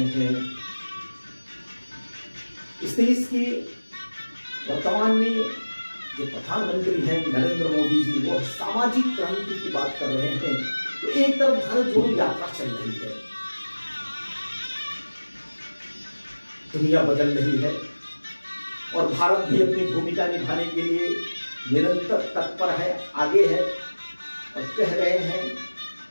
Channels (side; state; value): both; inverted; correlation -1.00